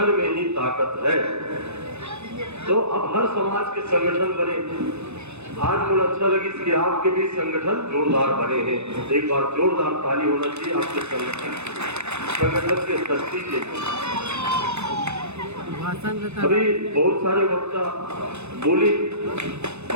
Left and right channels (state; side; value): late; left; 0.81 ms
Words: में ही ताकत है। तो अब हर समाज के संगठन बने। आज मुझे अच्छा लगी कि आपके भी संगठन जोरदार बने हैं। एक बार जोरदार ताली होना चाहिए आपके संगठन के शक्ति के। अभी बहुत सारे वक्ता बोली